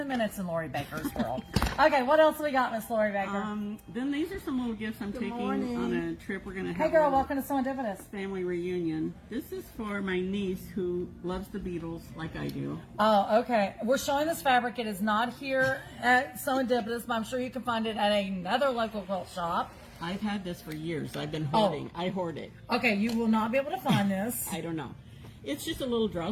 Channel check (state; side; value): identical; both; correlation 1.00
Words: minutes in Lori Baker's world. Okay, what else we got, Miss Lori Baker? Then these are some little gifts I'm taking on a trip. We're going to have Hey, girl, a welcome to Serendipitous. family reunion. This is for my niece who loves the Beatles like I do. Oh, okay. We're showing this fabric. It is not here at Serendipitous, but I'm sure you can find it at another local quilt shop. I've had this for years. I've been hoarding. I hoard it. Okay, you will not be able to find this. I don't know. It's just a little